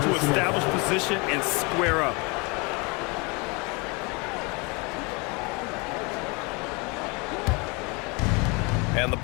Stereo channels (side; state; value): right; quieter; 29.1 dB